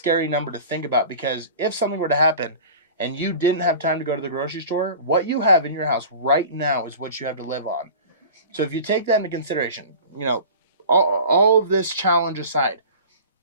number to think about, because if something were to happen and you didn't have time to go to the grocery store, what you have in your house right now is what you have to live on. So if you take that into consideration, all of this challenge aside,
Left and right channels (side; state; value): both; inverted; correlation -0.38